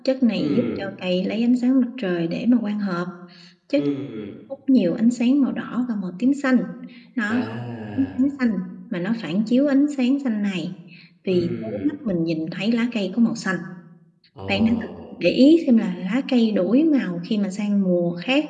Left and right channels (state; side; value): identical; both; correlation 1.00